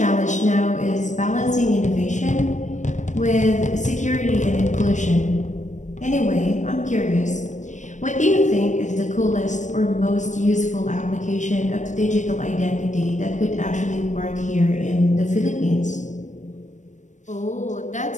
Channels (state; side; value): late; right; 0.35 ms